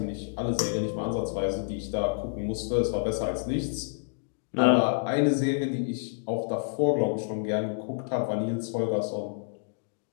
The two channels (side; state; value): right; silent; digital silence